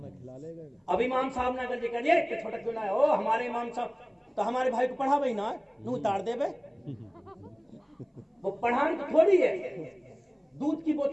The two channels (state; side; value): identical; both; correlation 1.00